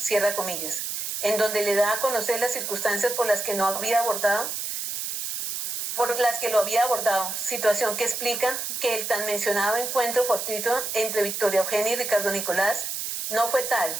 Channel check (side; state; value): right; noise; hiss, 3 dB below the sound